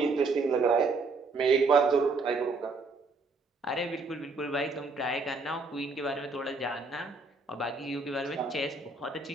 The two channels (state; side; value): quieter; left; 3.8 dB